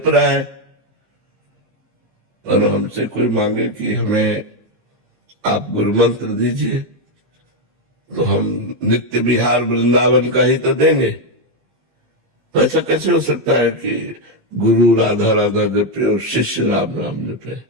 रहा है। और हमसे कोई मांगे कि हमें आप गुरु मंत्र दीजिए तो हम नित्य विहार वृंदावन का ही तो देंगे। तो ऐसा कैसे हो सकता है कि गुरु राधा राधा जपे और शिष्य राम राम जपे?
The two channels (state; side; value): late; left; 15 ms